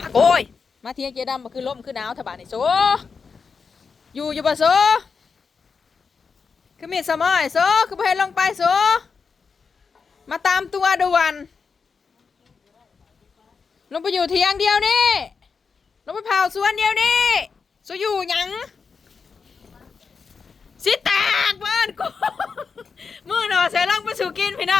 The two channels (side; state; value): right; quieter; 5.3 dB